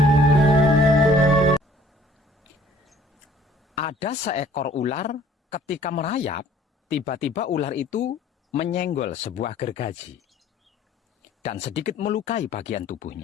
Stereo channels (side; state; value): both; normal; correlation 0.56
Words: seekor ular ketika merayap, tiba-tiba ular itu menyenggol sebuah gergaji dan sedikit melukai bagian